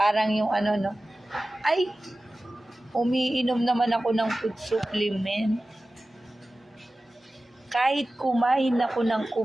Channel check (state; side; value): normal; both; correlation 0.96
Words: yung ay, umiinom naman ako ng food supplement. Kahit kumain ako ng